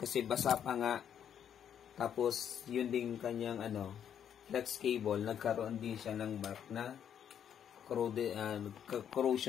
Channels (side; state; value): right; quieter; 8.9 dB